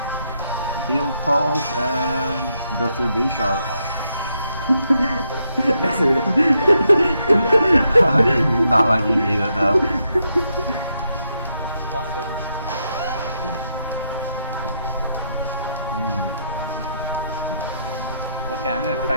Heal Pulse and goes to B Shark. That's it. Not like you need it though. Awesome. Okay, I'm gonna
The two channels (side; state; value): both; inverted; correlation -0.80